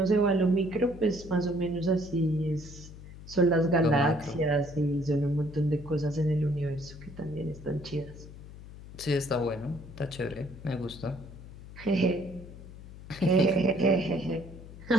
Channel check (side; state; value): left; noise; hum, 15 dB below the sound